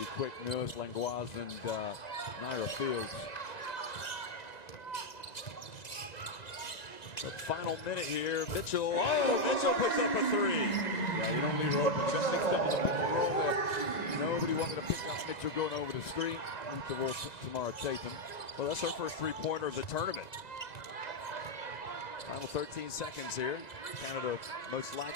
quick. Nurse, Langlois, and Naira Fields. The final minute here, Mitchell. Oh, Mitchell puts up a 3. Yeah, you don't leave her open. You got mixed up with the pick and roll there. Nobody wanted to pick up Mitchell going over the screen. Leave the ball Tamara Tatum. Well, that's her first 3-pointer of the tournament. Final 13 seconds here. Canada most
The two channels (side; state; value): right; late; 1.9 ms